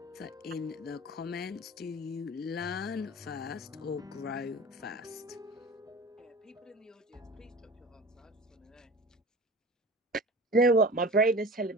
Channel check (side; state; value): both; normal; correlation 0.37